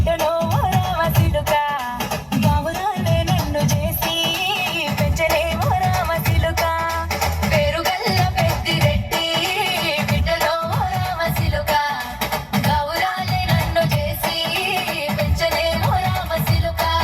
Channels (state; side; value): identical; both; correlation 1.00